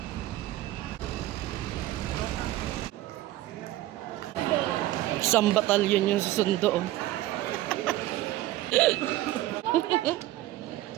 Isang batalyon yung susundo, oh.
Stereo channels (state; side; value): quieter; left; 15.7 dB